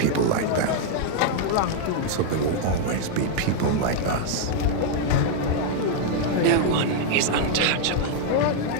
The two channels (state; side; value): different; both; correlation 0.00